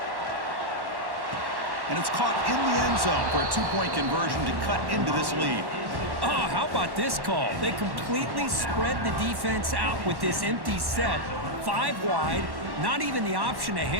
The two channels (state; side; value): late; left; 1.1 ms